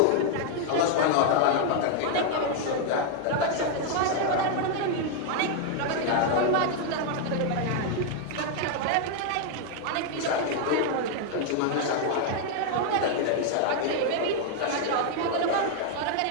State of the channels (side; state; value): both; different; correlation 0.00